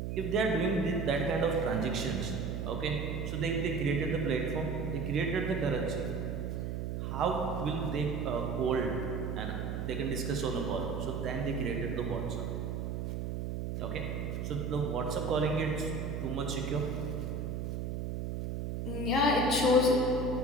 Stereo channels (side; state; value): right; noise; hum, 3 dB below the sound